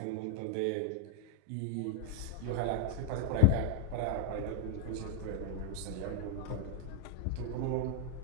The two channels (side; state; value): both; different; correlation 0.00